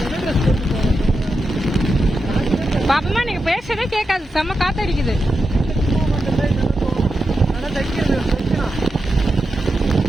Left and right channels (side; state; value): both; normal; correlation 0.88